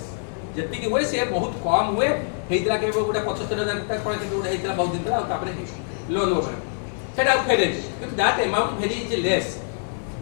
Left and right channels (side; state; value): right; silent; 60 dB below the other